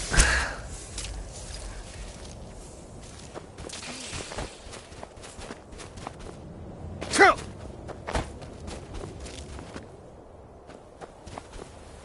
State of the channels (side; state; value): both; identical; correlation 1.00